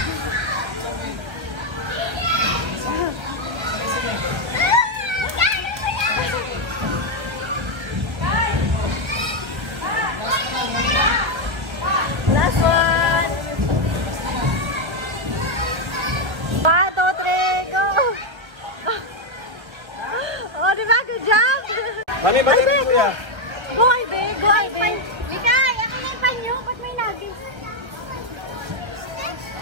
Last one! 1, 2, 3, go! Oh, di ba? Good job! Mami, bakit Ivy, kuya? Go, Ivy! Go, Ivy! Mikay, ako na yung panyo. Ba't may labis?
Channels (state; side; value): late; left; 1.5 ms